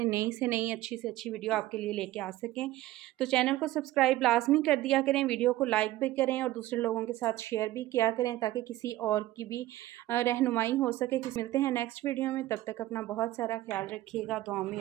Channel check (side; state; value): left; quieter; 15.9 dB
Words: नई से नई अच्छी से अच्छी वीडियो आपके लिए लेके आ सकें। तो चैनल को सब्सक्राइब लाजमी कर दिया करें, वीडियो को लाइक भी करें और दूसरे लोगों के साथ शेयर भी किया करें ताकि किसी और की भी रहनुमाई हो सके। मिलते हैं नेक्स्ट वीडियो में, तब तक अपना बहुत सारा ख्याल रखिएगा, दुआ में